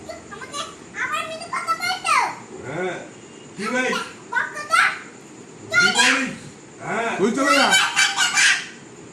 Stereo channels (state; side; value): identical; both; correlation 1.00